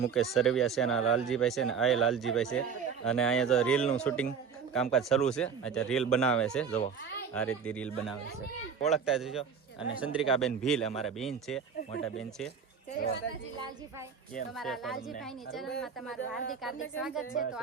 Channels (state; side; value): quieter; left; 6.5 dB